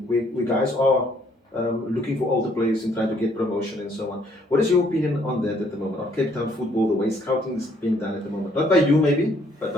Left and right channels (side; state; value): both; normal; correlation 0.66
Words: where guys are looking for older players and trying to get promotion and so on. What is your opinion on that at the moment, on Cape Town football, the way scouting is being done at the moment? Not by you maybe, but